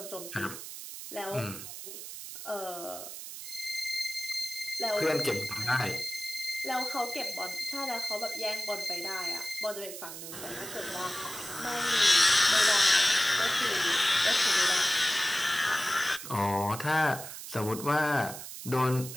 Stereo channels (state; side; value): noise; right; hiss, 10 dB below the sound